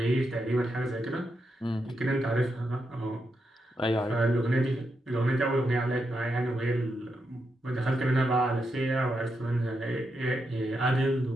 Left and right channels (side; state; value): both; normal; correlation 0.84